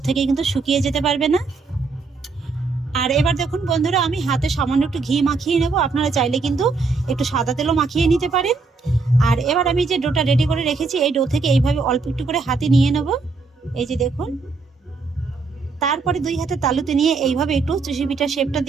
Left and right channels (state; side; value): quieter; left; 4.2 dB